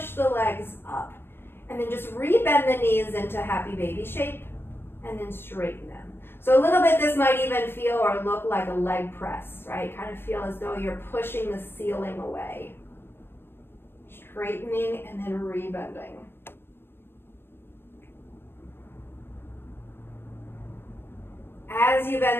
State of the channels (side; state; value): right; late; 0.11 ms